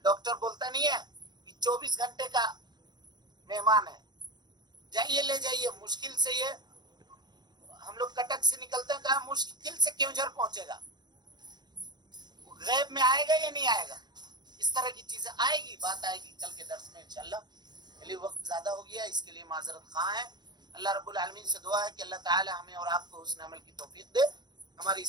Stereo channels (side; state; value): left; late; 0.21 ms